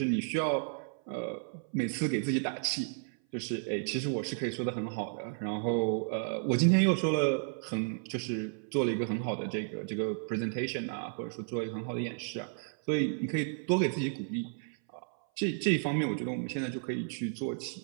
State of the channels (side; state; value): left; silent; 56 dB below the other